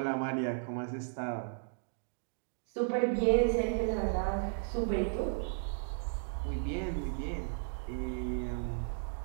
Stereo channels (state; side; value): silent; left; digital silence